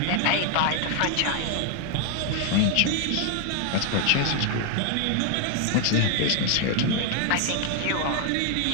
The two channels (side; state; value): both; different; correlation 0.00